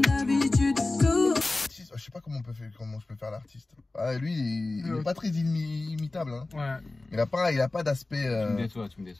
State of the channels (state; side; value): quieter; right; 3.1 dB